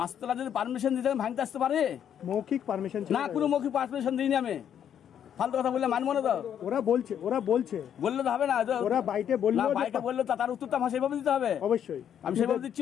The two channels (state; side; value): quieter; right; 9.2 dB